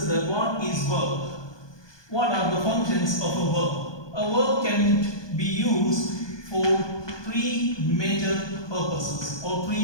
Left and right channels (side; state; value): right; late; 1.2 ms